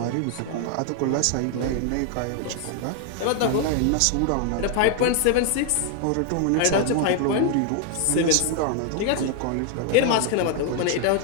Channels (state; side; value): different; both; correlation 0.00